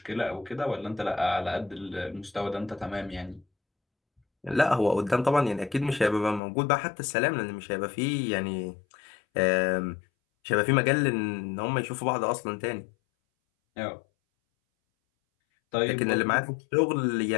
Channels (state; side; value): drops out; right; at 6.4 s